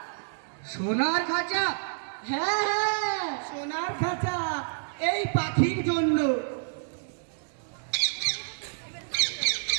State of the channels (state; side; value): silent; left; digital silence